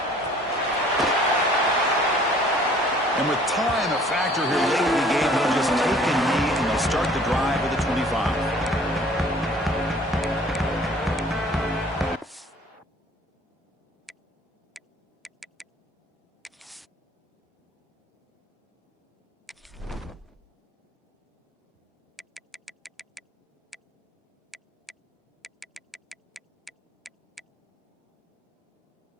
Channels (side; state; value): both; normal; correlation 0.54